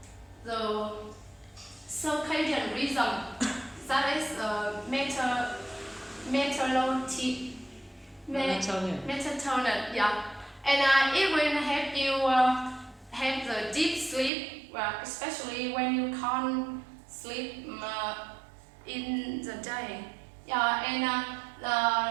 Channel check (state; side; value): drops out; left; at 14.3 s